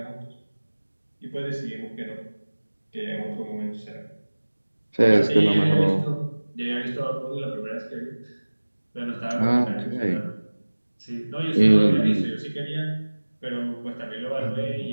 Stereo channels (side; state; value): both; inverted; correlation -1.00